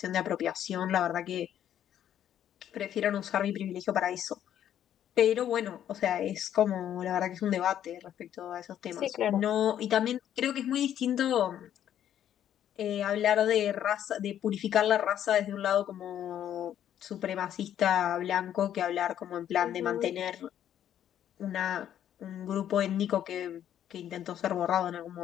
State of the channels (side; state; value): right; quieter; 10.5 dB